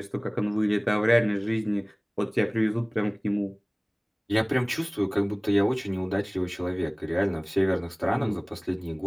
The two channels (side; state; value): both; identical; correlation 1.00